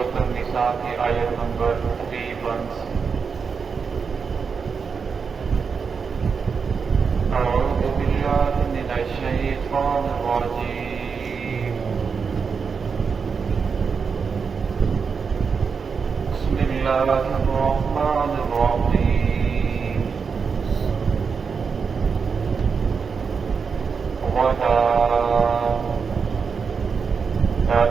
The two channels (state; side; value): quieter; left; 5.6 dB